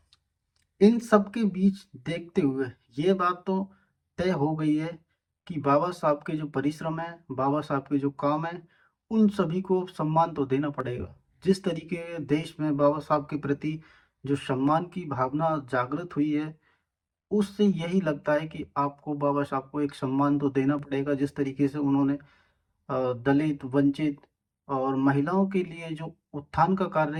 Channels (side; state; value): both; identical; correlation 1.00